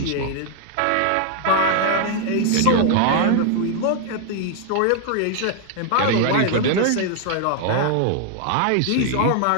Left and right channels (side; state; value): both; different; correlation 0.00